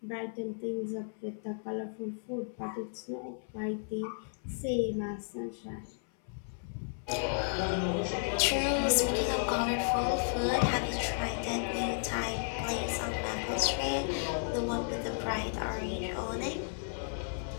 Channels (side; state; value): right; silent; 55 dB below the other